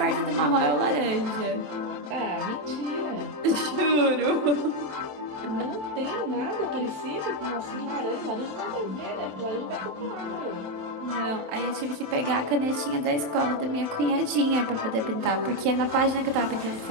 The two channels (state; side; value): late; left; 27 ms